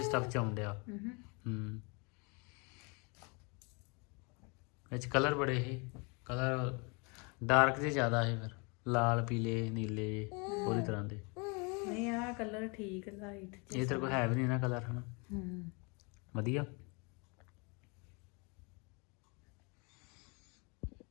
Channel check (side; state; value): right; quieter; 31.7 dB